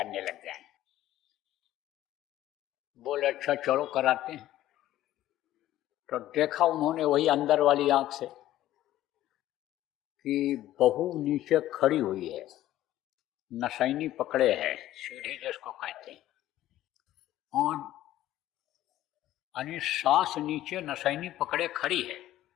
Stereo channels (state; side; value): quieter; right; 13.9 dB